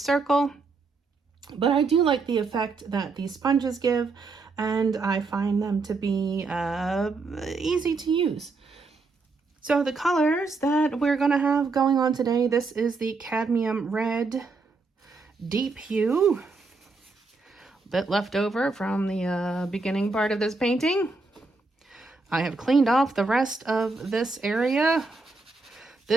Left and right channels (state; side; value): quieter; left; 3.9 dB